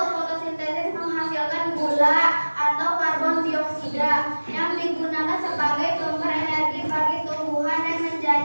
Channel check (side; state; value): both; inverted; correlation -1.00